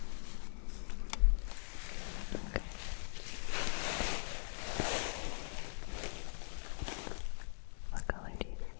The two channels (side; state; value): right; silent; digital silence